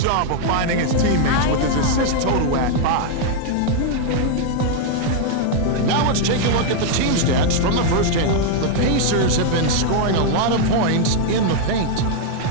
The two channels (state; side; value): different; both; correlation 0.00